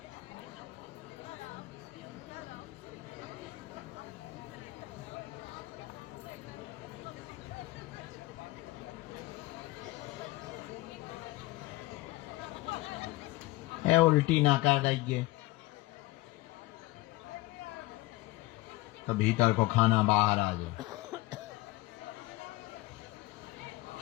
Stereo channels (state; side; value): quieter; right; 19.3 dB